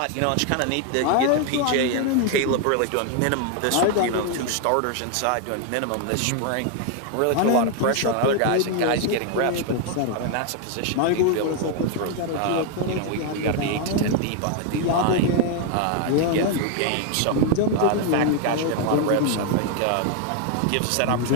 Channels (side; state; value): both; different; correlation 0.01